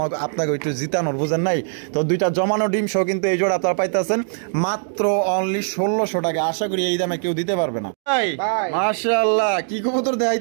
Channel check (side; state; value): left; silent; digital silence